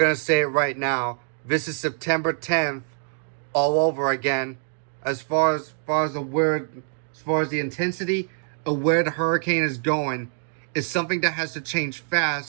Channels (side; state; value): left; silent; 62 dB below the other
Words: to say it right now. This is September 10th all over again. As far as the intensity of where the hurricane is going, is something that has to change